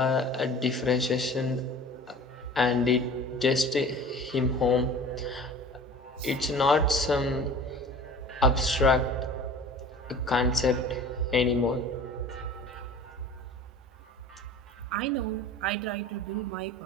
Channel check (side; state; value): both; normal; correlation 0.42